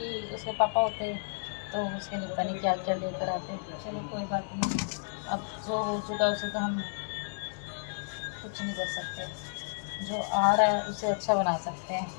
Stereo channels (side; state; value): right; silent; digital silence